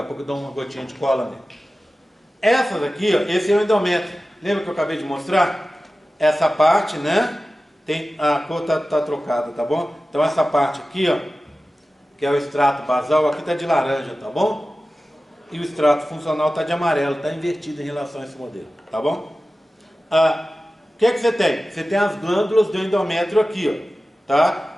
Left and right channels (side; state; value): both; normal; correlation 0.95